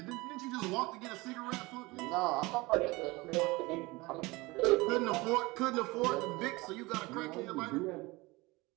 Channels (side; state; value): left; quieter; 22.7 dB